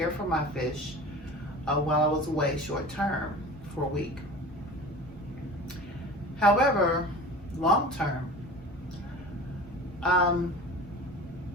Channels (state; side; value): normal; both; correlation 0.38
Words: for my fish while I was away short term for a week. However, long term,